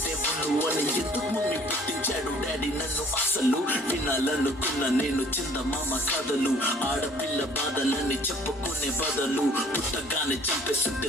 దేవుళ్ళు అని. ఎందుకు మమ్మీ పుట్టించాడు డాడీ నన్ను? అసలు వినాలనుకున్న నేను చందమామ కథలు, ఆడపిల్ల బాధలని చెప్పుకునే బదులు పుట్టగానే చంపేస్తుంటే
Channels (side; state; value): both; normal; correlation 0.56